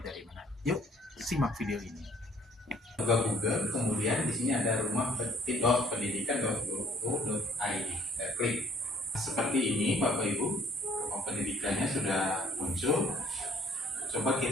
dari mana? Yuk simak video ini. Buka Google, kemudian di sini ada rumah.pendidikan.go.id. Klik seperti ini Bapak Ibu. Pendidikannya sudah muncul. Coba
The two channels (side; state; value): both; normal; correlation 0.59